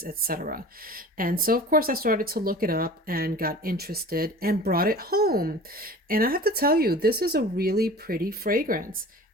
etc. And so, of course, I started to look it up and got interested and brought it home. And I have to tell you, this is a really pretty fragrance.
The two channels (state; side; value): normal; both; correlation 0.40